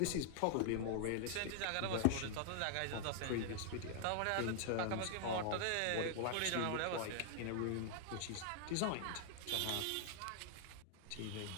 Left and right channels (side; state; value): both; different; correlation 0.00